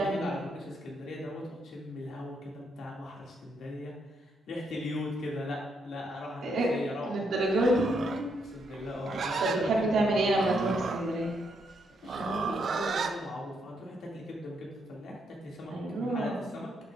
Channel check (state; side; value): normal; both; correlation 0.77